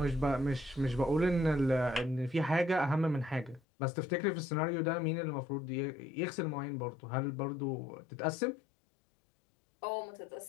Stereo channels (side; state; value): right; drops out; at 3.6 s